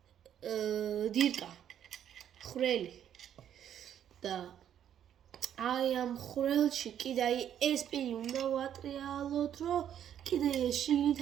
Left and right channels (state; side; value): quieter; left; 9.9 dB